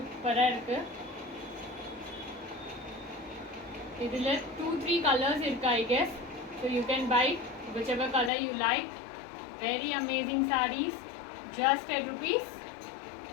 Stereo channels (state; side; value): drops out; right; at 8.3 s